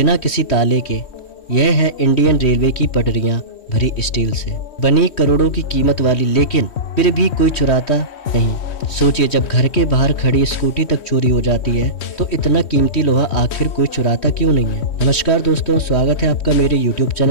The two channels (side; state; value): right; late; 3.1 ms